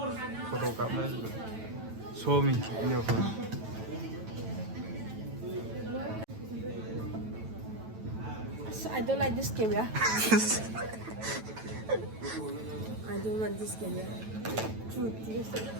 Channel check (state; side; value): late; left; 9.1 ms